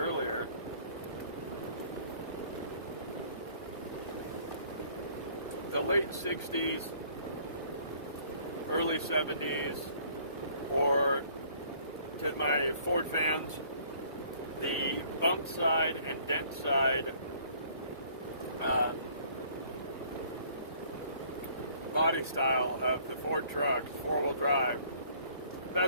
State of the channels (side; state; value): both; inverted; correlation -0.58